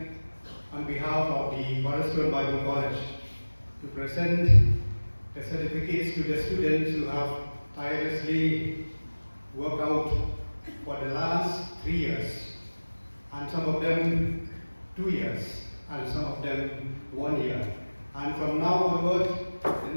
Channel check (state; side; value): inverted; both; correlation -1.00